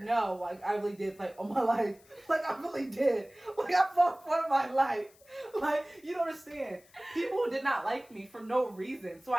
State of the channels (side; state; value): left; noise; hiss, 28 dB below the sound